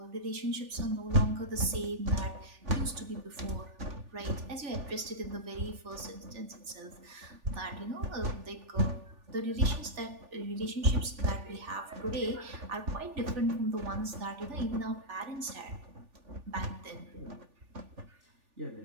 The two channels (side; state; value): left; late; 3.4 ms